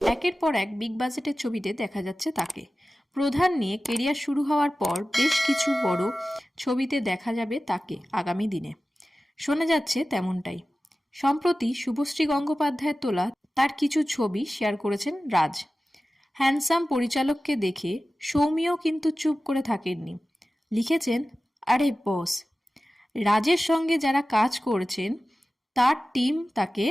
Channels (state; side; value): normal; both; correlation 0.96